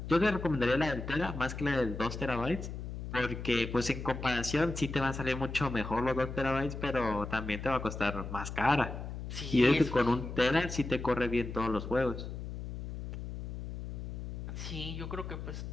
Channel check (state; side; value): noise; left; hum, 7 dB below the sound